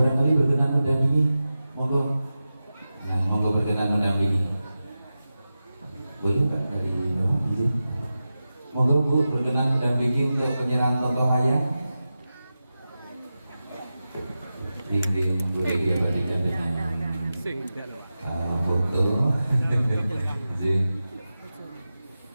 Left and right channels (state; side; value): inverted; both; correlation -0.93